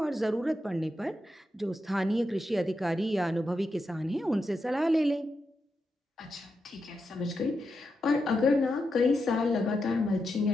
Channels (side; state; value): both; normal; correlation 0.86